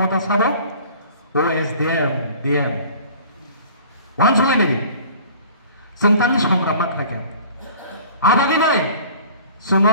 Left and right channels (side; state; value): both; inverted; correlation -0.47